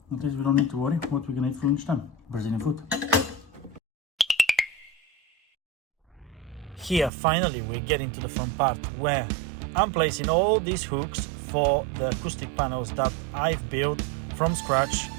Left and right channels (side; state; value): left; drops out; at 7.1 s